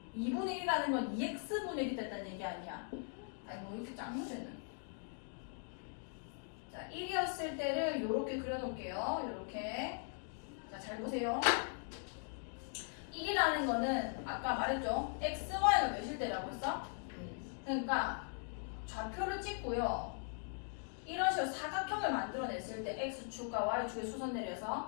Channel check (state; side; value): silent; right; 51 dB below the other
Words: 2분의 1이라는 건 2x분의 1이 됐다는 얘기 아니야. 아니, 뭐 이렇게 짱무새는. 자, 1이었을 때를 이렇게 그려놓을게요. 이렇게. 자, 잘 보세요. 1이라는 거는 아까 말했죠. x, y가 몇일 때라고 했어? 그러니까 좌표를 찍고요. 이런 식으로 사각형을 만들어냈을 때 x축과 y축에 수선